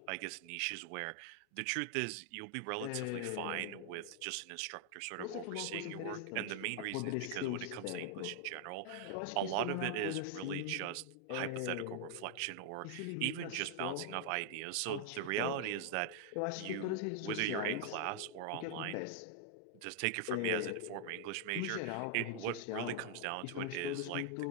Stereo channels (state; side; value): different; both; correlation 0.00